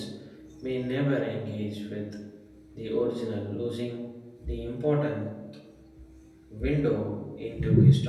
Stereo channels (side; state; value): both; identical; correlation 1.00